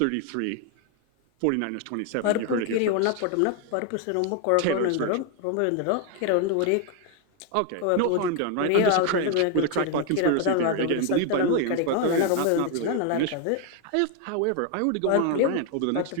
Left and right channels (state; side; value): different; both; correlation 0.01